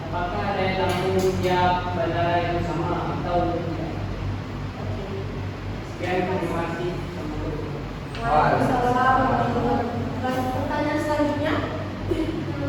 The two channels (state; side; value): identical; both; correlation 1.00